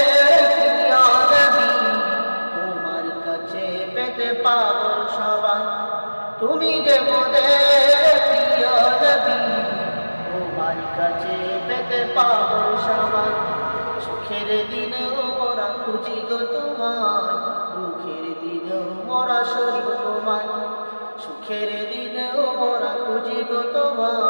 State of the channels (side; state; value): both; inverted; correlation -1.00